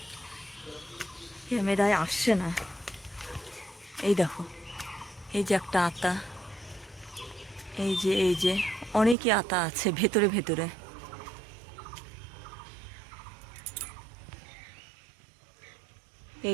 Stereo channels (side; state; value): left; drops out; at 9.2 s